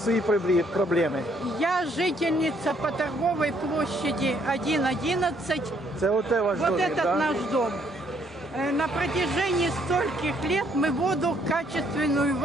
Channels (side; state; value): both; normal; correlation 0.68